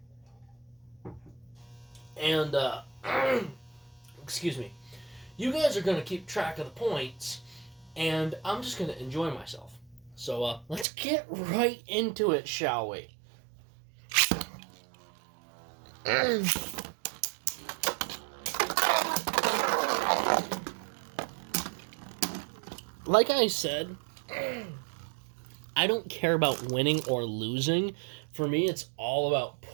And, excuse me. You guys are going to keep track of the points, and I'm just going to enjoy myself. So, let's get right into it, shall we? Like I said, I don't care about winning or losing. For me, it's all about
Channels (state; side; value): drops out; left; at 10.9 s